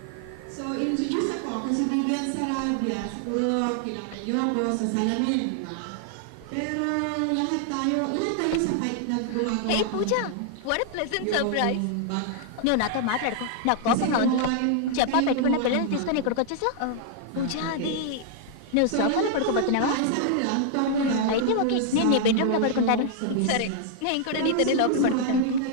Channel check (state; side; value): different; both; correlation 0.00